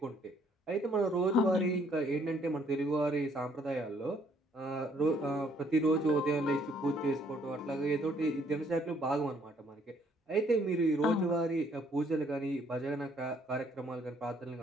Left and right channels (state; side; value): normal; both; correlation 0.65